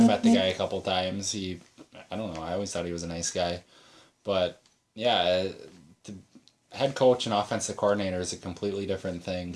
met the guy a couple times. I don't know, I always thought he was a nice guy. But, yeah, the head coach and offensive coordinator is a completely different thing.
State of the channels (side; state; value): both; identical; correlation 1.00